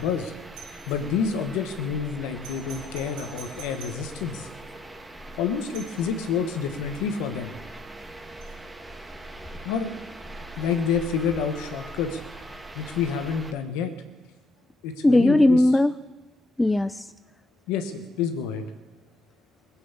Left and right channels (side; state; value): right; quieter; 3.2 dB